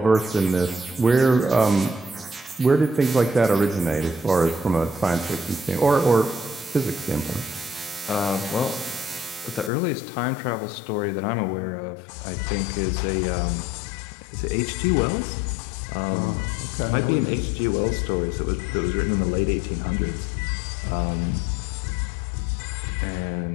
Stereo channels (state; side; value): drops out; right; at 9.7 s